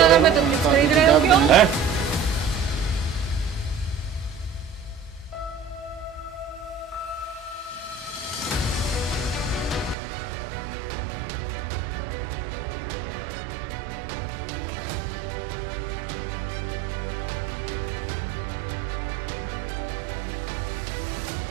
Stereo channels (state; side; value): drops out; left; at 10.0 s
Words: में तुम खरीद रहे हो क्यों? हैं?